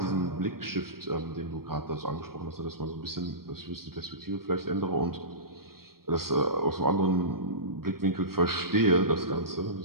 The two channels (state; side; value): late; left; 0.93 ms